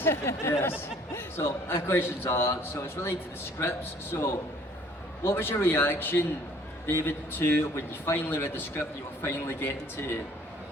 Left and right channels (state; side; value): normal; both; correlation 0.57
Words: yes. So, my questions are, so it's related to the scripts. So, what was your reaction, David, to when you finally read the script, you were finally getting to